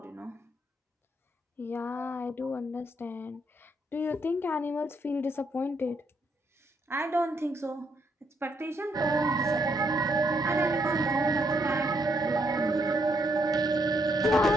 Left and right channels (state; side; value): normal; both; correlation 0.74